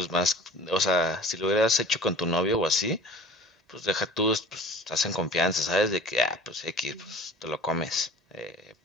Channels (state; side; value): normal; both; correlation 0.43